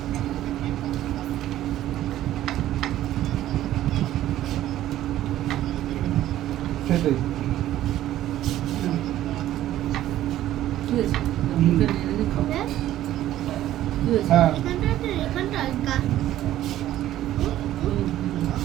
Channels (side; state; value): left; quieter; 13.4 dB